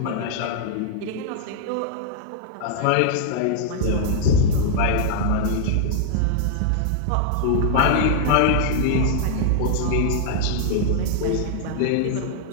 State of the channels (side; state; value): both; different; correlation -0.01